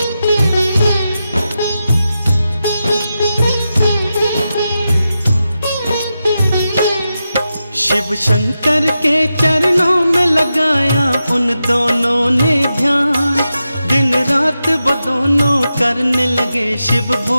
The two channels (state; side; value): inverted; both; correlation -0.90